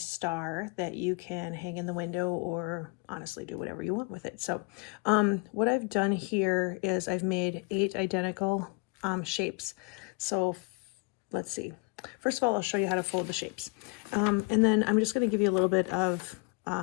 that you can hang in the window or honestly do whatever you want with it. So what I've done here is I've made 8 identical shapes. So let's see. First of all, I'll show you how to fold the shapes. And then I'm just going to give you a little bit of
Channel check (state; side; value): quieter; right; 31.4 dB